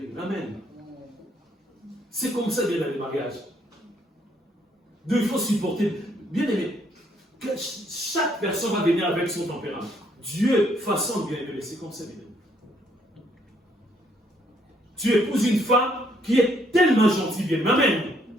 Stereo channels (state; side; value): normal; both; correlation 0.69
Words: Amen. C'est comme ça, bien, dans les mariages. Donc il faut supporter. Bien aimé, chaque personne va venir avec son tempérament. Dieu façonne bien aimé, c'est comme ça, bien aimé. Tu épouses une femme qui est tellement gentille, bien aimé. Amen.